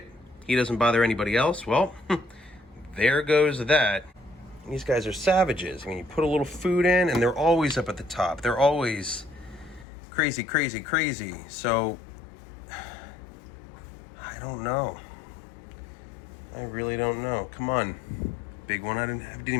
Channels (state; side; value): drops out; right; at 9.9 s